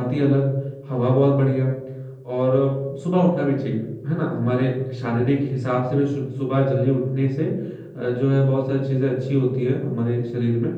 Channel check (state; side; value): identical; both; correlation 1.00